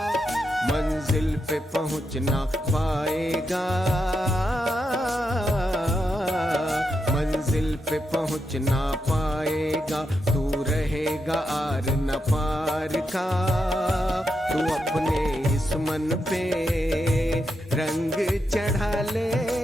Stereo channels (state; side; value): normal; both; correlation 0.84